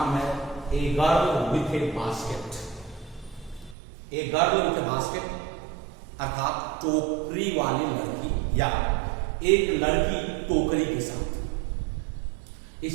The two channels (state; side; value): drops out; left; at 3.8 s